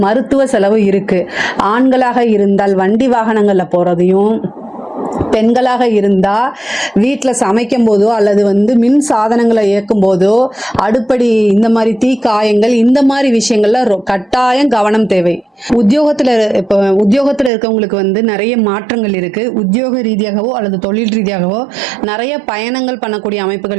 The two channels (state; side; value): drops out; left; at 17.5 s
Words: மருத்துவ செலவு இருக்கு. ஆண்களாக இருந்தால் வண்டி வாகனங்கள்ல போறதையும், பெண்களாக இருந்தா வீட்டில் சமைக்கும் போதோ அல்லது மின் சாதனங்களை இயக்கும் போதோ அடுப்படி இந்த மாதிரி தீ காயங்கள் இந்த மாதிரி விஷயங்கள்ல கட்டாயம் கவனம் தேவை. உத்தியோகத்துல இருக்கவங்களுக்கு நிறைய மாற்றங்கள் இருக்கு. உத்தியோக ரீதியாகவோ அல்லது தொழில் ரீதியாகவோ நிறைய பயணங்கள் பண்ணக்கூடிய